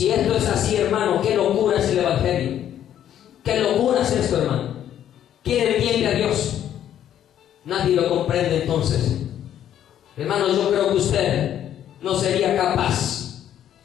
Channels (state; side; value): quieter; right; 10.6 dB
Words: esto es así, hermano, qué locura es el Evangelio. ¿Qué locura es esto, hermano? ¿Quién entiende a Dios? Nadie lo comprende entonces. Hermano, yo creo que usted no sería capaz.